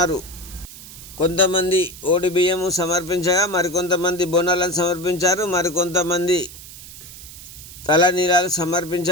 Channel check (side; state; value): right; noise; hiss, 16 dB below the sound